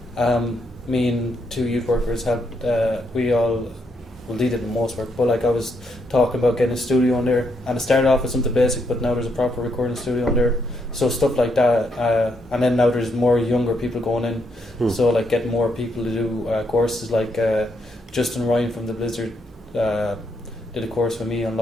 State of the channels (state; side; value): normal; both; correlation 0.77